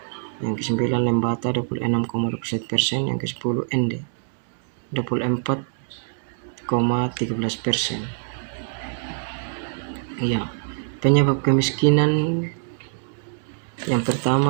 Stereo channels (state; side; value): silent; left; digital silence